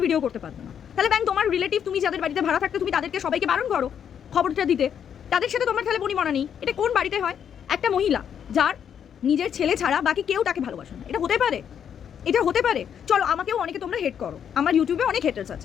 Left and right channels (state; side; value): quieter; right; 8.4 dB